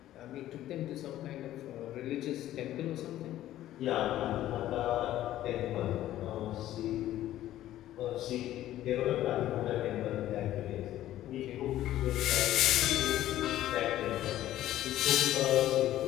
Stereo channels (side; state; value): right; quieter; 13.6 dB